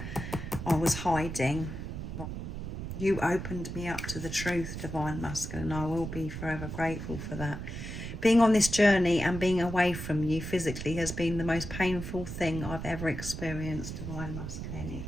I was hiding. You opened me up to the truth, Divine Masculine. I will be forever grateful for that. Being on this journey and being away from you physically has been the most painful thing I've ever experienced, Divine Masculine.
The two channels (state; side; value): noise; right; rumble, 7 dB below the sound